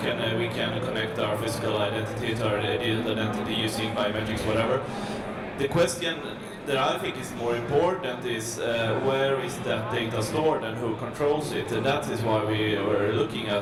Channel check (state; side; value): identical; both; correlation 1.00